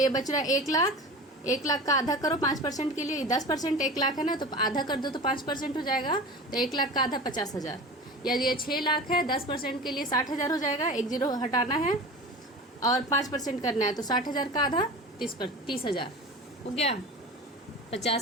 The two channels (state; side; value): normal; both; correlation 0.34